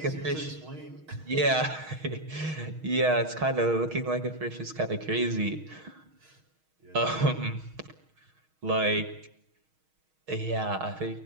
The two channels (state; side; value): late; left; 6.4 ms